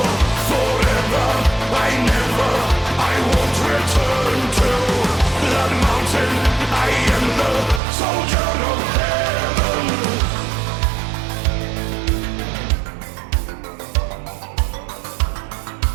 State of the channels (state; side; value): drops out; left; at 7.8 s